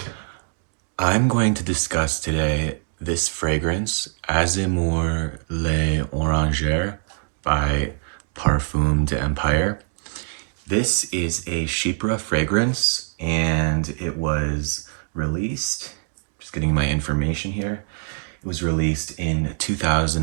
I'm going to discuss today this fragrance, Azemour Les Orangers by Parfum de Empire. This is a chypre fragrance and it was released, just getting my information here, it was released in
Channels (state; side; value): silent; left; digital silence